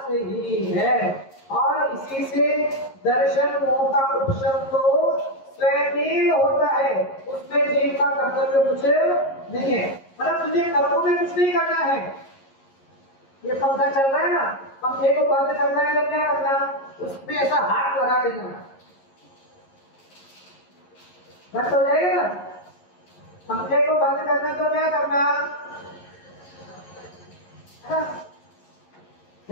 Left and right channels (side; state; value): right; late; 11 ms